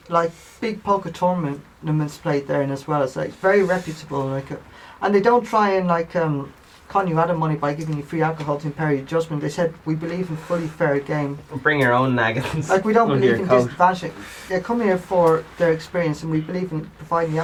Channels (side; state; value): both; identical; correlation 1.00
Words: like big poker tournaments played there, and as well as like very reputable. Like, and they don't try and like con you out of money by giving you free alcohol to impair your judgment. They said we believe in fully fair game. bring your own naggins. Like we don't believe in disadvantaging. They come here for their experience, and we believe in providing the